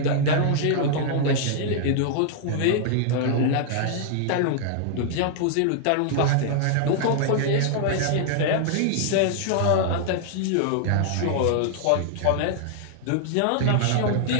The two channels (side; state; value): both; different; correlation -0.01